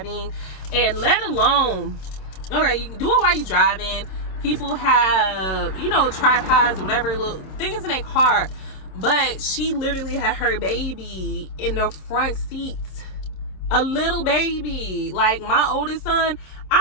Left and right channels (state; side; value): late; right; 27 ms